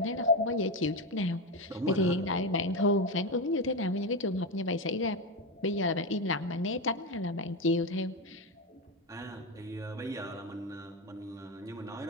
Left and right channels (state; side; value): normal; both; correlation 0.14